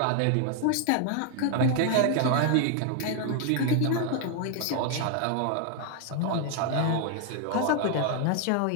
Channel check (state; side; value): different; both; correlation 0.01